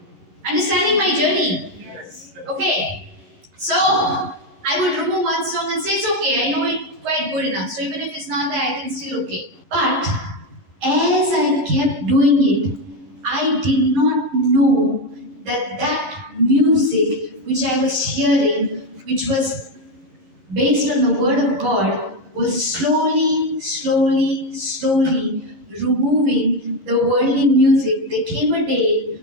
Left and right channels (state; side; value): late; left; 11 ms